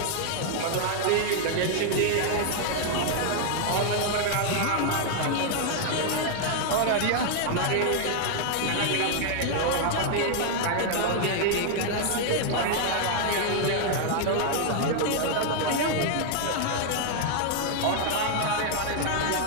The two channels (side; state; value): both; different; correlation 0.00